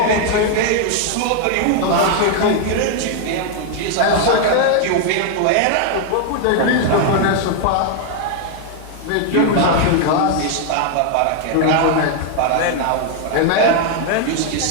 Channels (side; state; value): both; different; correlation 0.00